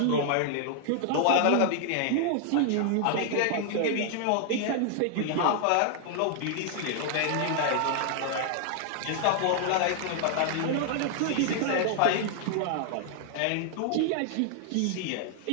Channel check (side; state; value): both; different; correlation 0.00